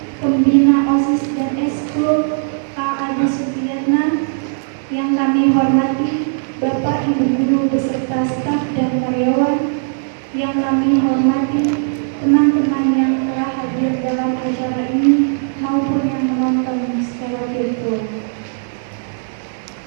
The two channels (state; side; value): silent; left; digital silence